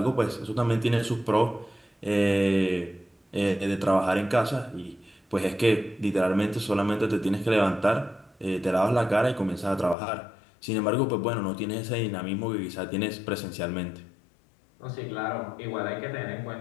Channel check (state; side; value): drops out; right; at 10.0 s